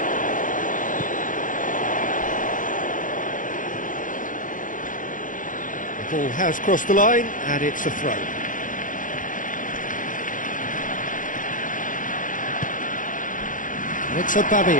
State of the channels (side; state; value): right; late; 0.38 ms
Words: The ball has crossed the line, and it's a throw. And it's